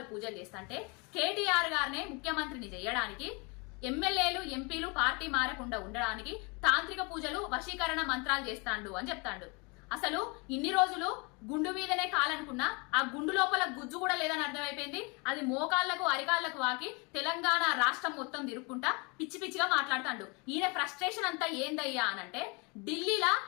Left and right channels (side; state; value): right; quieter; 30.2 dB